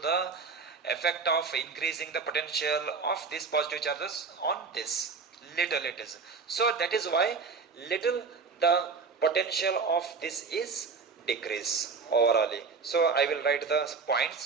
the effect of increasing the potential of these positive charges on this. Little it is. So that is why little the potential of this is decrease overall. So I will write the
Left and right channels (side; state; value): left; quieter; 5.0 dB